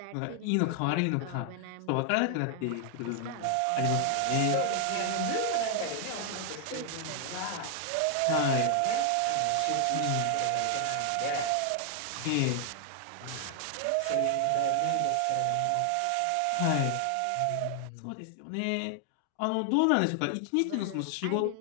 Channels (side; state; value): both; different; correlation 0.00